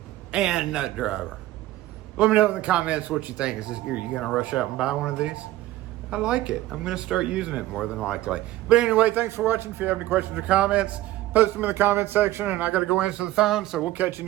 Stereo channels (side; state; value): left; quieter; 15.8 dB